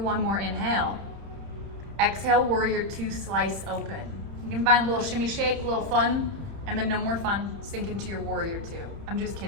more inhale. Exhale, warrior two, slice open. You can find a little shimmy shake, a little fun, and then no more fun, sink into your warrior two. I'm just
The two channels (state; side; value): late; left; 30 ms